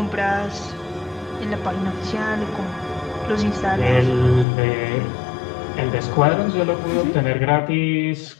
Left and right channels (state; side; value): drops out; right; at 4.5 s